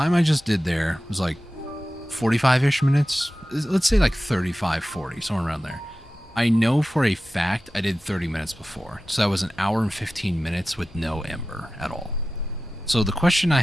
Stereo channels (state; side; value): normal; both; correlation 0.94